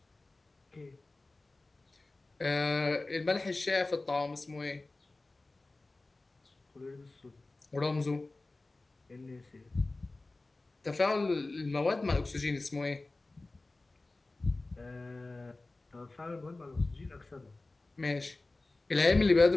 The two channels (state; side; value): quieter; right; 3.1 dB